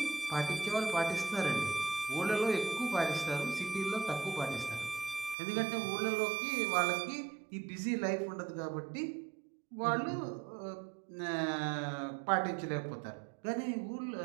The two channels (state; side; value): drops out; left; at 5.4 s